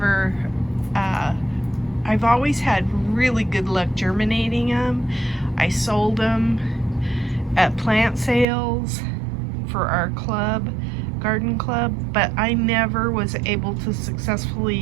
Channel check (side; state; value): left; drops out; at 8.5 s